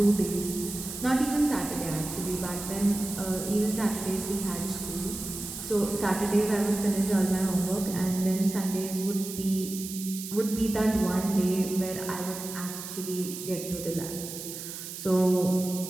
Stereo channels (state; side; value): noise; right; hiss, 9 dB below the sound